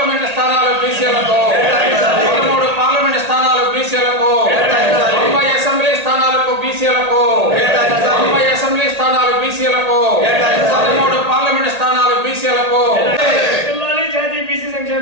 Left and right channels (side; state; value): left; late; 1.9 ms